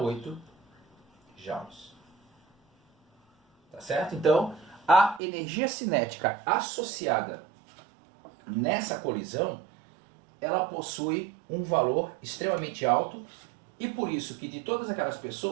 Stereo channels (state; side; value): drops out; left; at 5.2 s